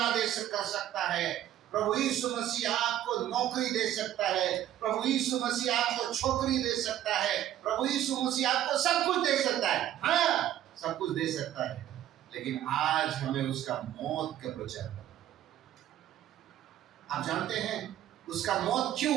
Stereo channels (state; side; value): quieter; left; 12.1 dB